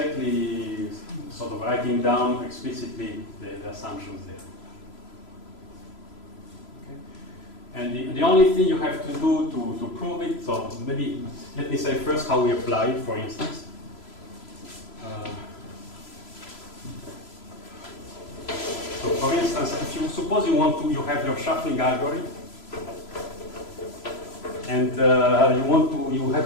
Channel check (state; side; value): late; right; 3.0 ms